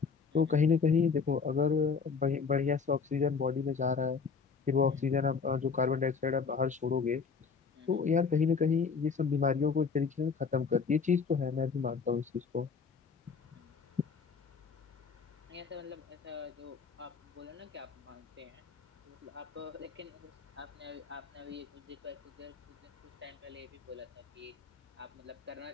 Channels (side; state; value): right; quieter; 5.4 dB